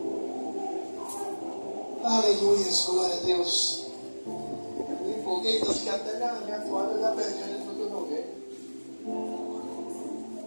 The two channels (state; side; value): inverted; both; correlation -1.00